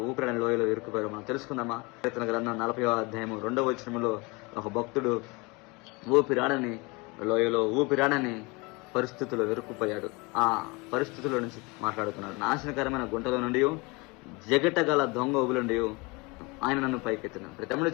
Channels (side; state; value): right; quieter; 26.8 dB